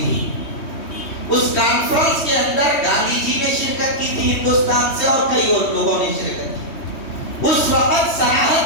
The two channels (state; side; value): late; right; 3.2 ms